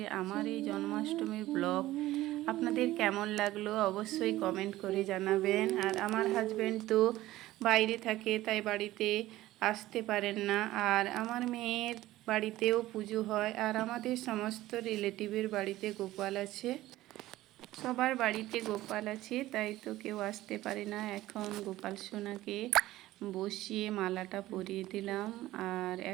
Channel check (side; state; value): left; quieter; 16.1 dB